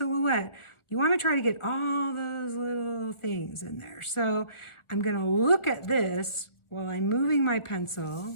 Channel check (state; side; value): late; right; 1.4 ms